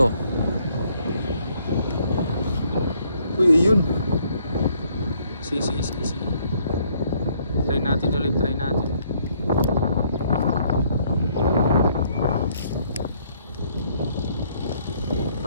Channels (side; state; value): both; inverted; correlation -0.67